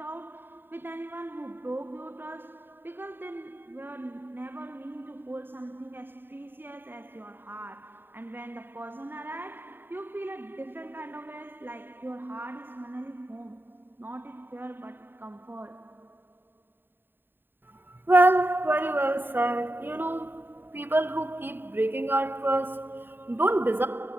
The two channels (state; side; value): late; left; 0.096 ms